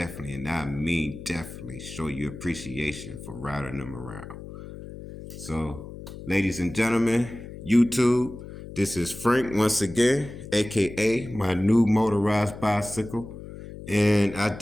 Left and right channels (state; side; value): noise; left; hum, 13 dB below the sound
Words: I mean definitely, show you appreciation for riding them around. So, ladies and gentlemen, YouTube, this is Frank once again, aka my new motorized bicycle. And I